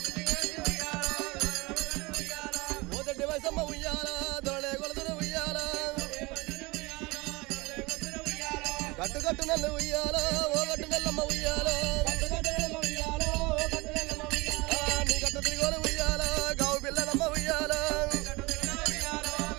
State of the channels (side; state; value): left; quieter; 24.1 dB